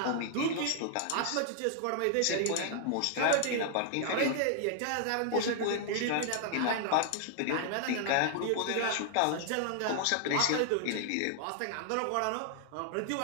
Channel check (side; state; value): both; different; correlation -0.01